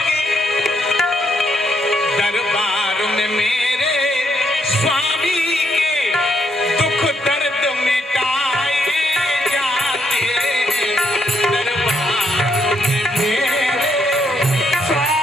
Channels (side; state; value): both; normal; correlation 0.75